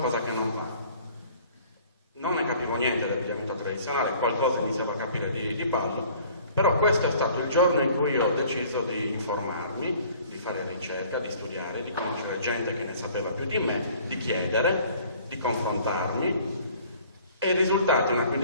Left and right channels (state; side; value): inverted; both; correlation -0.53